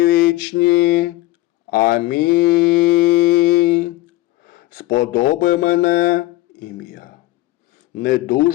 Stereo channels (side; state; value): right; quieter; 18.1 dB